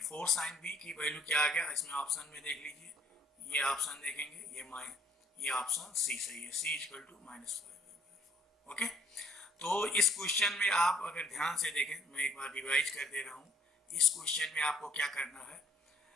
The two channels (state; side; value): normal; both; correlation 0.63